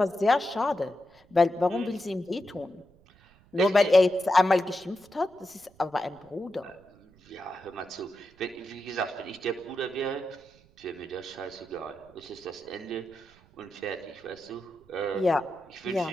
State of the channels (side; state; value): right; noise; rumble, 29 dB below the sound